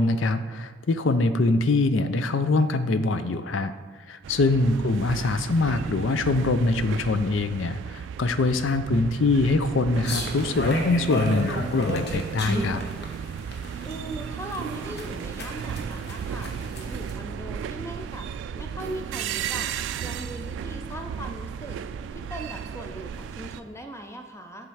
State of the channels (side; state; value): both; normal; correlation 0.56